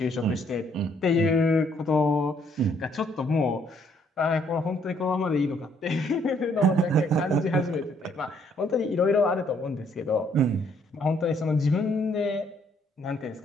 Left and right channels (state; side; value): normal; both; correlation 0.67